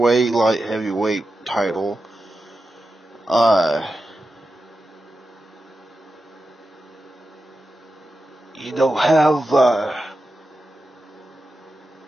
light heavyweight title. You don't have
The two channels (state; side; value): normal; both; correlation 0.90